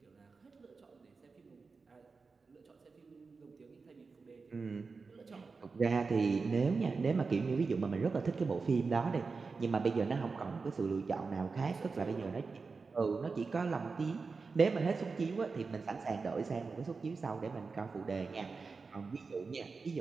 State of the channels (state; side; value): quieter; left; 4.5 dB